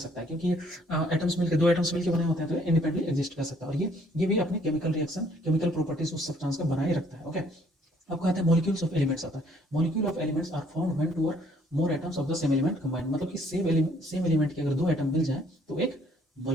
है क्योंकि ये एटम्स मिलकर, दो एटम्स मिलकर बने होते हैं तो इंडिपेंडेंटली एग्जिस्ट कर सकता है, और ये भी अपने केमिकल रिएक्शन, केमिकल प्रॉपर्टीज उस सब्सटेंस का बनाए रखता है। ओके, अब कहते हैं मॉलिक्यूल्स ऑफ एलिमेंट्स आता है। Molecule of elements are found when two or more atoms of the same element combined, मतलब कि सेम एलिमेंट के अगर दो एटम मिल जाए तो एक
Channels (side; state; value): both; normal; correlation 0.62